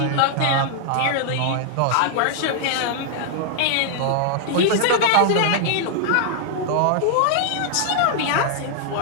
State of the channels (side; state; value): both; different; correlation -0.01